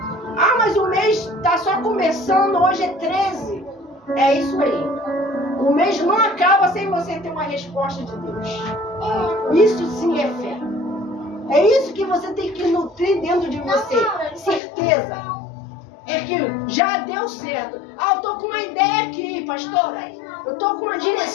Ah, mas o mês está só começando, hoje é 13. É isso aí. O mês não acaba sem você ter uma resposta de Deus. Isso sim é fé. É isso que você tem que nutrir dentro de você. Certeza. É que já deu certo. Ah, eu tô com uma ideia aqui, pastora. Eu tô com uma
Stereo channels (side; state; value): right; drops out; at 14.6 s